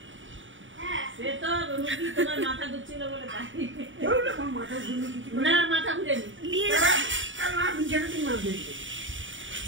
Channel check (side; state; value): left; late; 0.56 ms